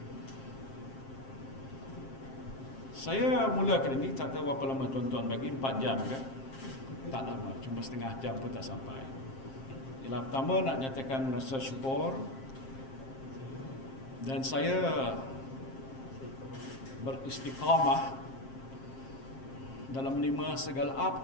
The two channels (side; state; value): right; late; 7.5 ms